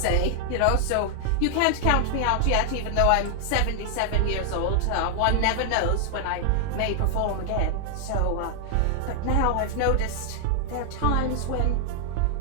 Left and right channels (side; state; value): both; different; correlation 0.00